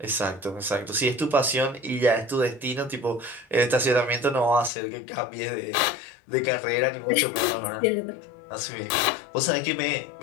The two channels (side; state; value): right; drops out; at 4.7 s